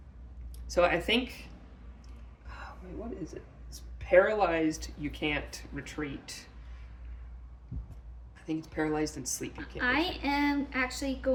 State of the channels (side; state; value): both; identical; correlation 1.00